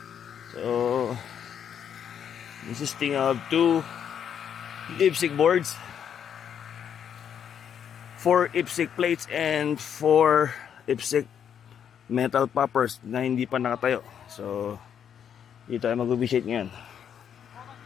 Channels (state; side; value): quieter; right; 8.5 dB